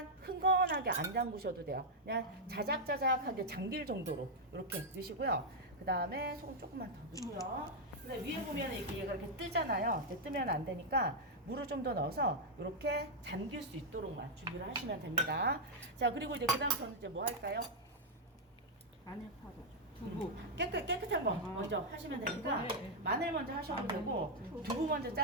흥건하게 안 담그셔도 돼요. 그냥 자작자작하게 잠길 정도로 이렇게 넣으시고요. 그 다음에 소금 조금만 더 넣고요. 근데 위에 보면 이렇게 얘가 이렇게 뜨잖아요. 이제 뜨면 안 되니까 물을 좀 더 넣어서 이렇게 잠길 수 있도록만 준비를 하시면 됩니다. 자, 그리고 이제 그다음 저는 이제 뭐 할까요? 마늘 파도. 두부. 깨끗한 거 먼저 하시면 되니까 마늘 먼저 하셔도 되고 두부 먼저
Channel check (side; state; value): both; normal; correlation -0.03